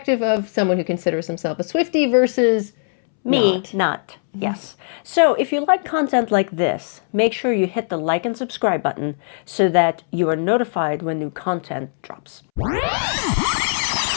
of someone who considers himself a Swiftie versus Me, not. Yes. So if you like content like this, make sure you hit the like and subscribe button so that you are notified when new content drops.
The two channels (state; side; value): silent; right; 66 dB below the other